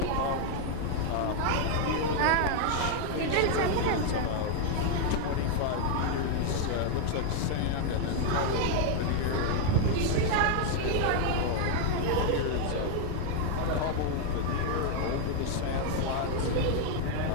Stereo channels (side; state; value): both; different; correlation 0.00